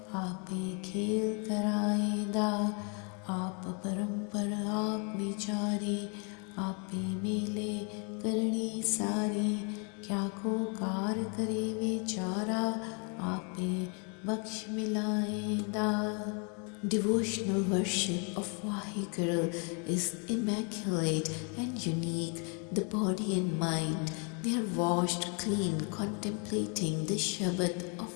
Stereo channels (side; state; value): right; quieter; 36.8 dB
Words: आपे खेल कराएदा. आप परंपर आप विचारी, आपे मेले करनी सारी. क्या को कार करे विचारा, आपे बख्श मिलाएदा. Devotional worship of Vaheguru is immaculate and unique. The body and mind, they are washed clean contemplating the Shabad of